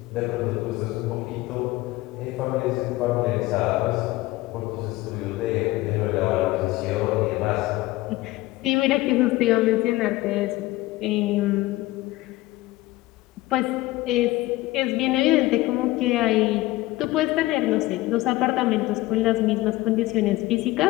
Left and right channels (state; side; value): quieter; right; 18.7 dB